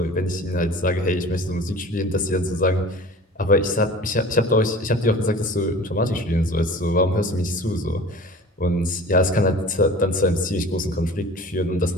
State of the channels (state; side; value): normal; both; correlation 0.41